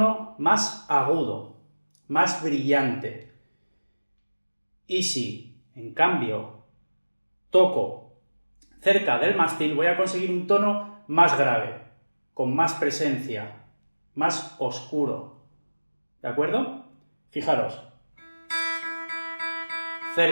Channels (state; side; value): inverted; both; correlation -1.00